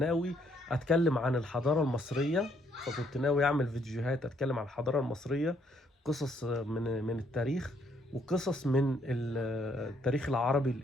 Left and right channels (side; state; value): both; normal; correlation 0.69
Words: أتكلم عن الحضارة المصرية، فكنت ناوي أعمل فيديوهات أتكلم عن الحضارة المصرية، قصص من التاريخ وقصص من التاريخ العربي